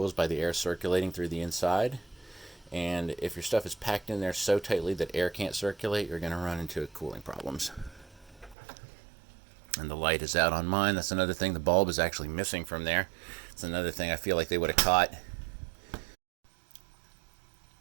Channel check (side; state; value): left; drops out; at 8.6 s